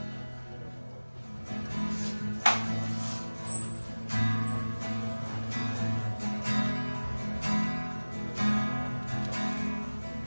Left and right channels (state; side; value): inverted; both; correlation -1.00